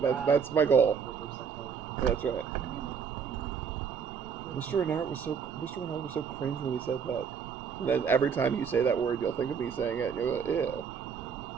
that's my goal. That's right. Mr. Renard was so cringe when he said that. And then every time you say that word, you'll think of me saying it. And you'll go, ew.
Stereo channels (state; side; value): quieter; left; 6.6 dB